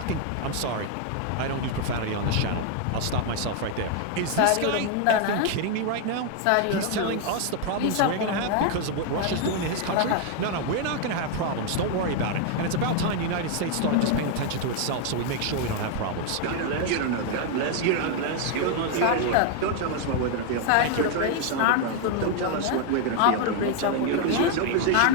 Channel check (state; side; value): different; both; correlation 0.00